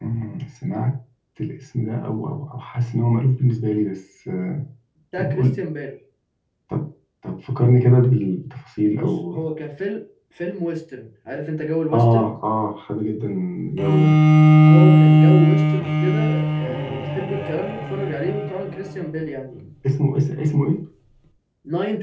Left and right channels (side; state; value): both; identical; correlation 1.00